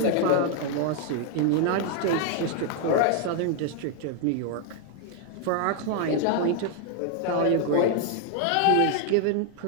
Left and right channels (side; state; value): both; different; correlation 0.00